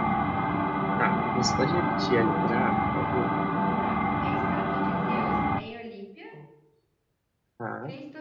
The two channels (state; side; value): identical; both; correlation 1.00